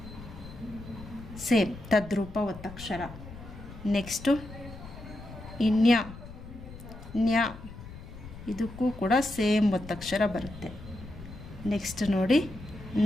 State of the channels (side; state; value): left; noise; rumble, 14 dB below the sound